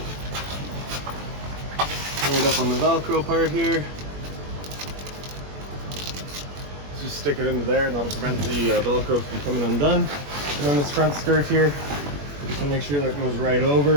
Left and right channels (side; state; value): left; late; 21 ms